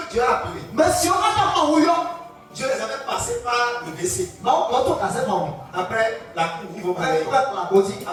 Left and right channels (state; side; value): identical; both; correlation 1.00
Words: Dieu a appelé, Dieu les avait passés par le WC. Après la cour, ils vont parler.